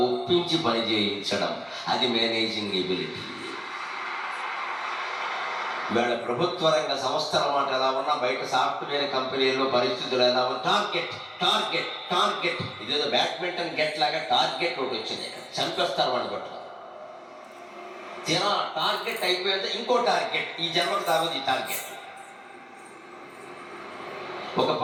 ఒప్పించి పని చేయించడం. అది మేనేజింగ్ ఎబిలిటీ. ఇవాళ ప్రభుత్వ రంగ సంస్థల మాట ఎలా ఉన్నా, బయట సాఫ్ట్వేర్ కంపెనీల్లో పరిస్థితులు ఎలా ఉన్నా, టార్గెట్ టార్గెట్ టార్గెట్. ఇదేదో బ్యాడ్మింటన్ గెట్ లాగా టార్గెట్ ఒకటి వచ్చింది, ఇక్కడ చంపేస్తారు వాడిని పట్టుకుని. టార్గెట్ అయిపోయింది, ఇంకో టార్గెట్, ఈ జన్మకు తాగుతుంది ఈ టార్గెట్. ఒక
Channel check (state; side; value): identical; both; correlation 1.00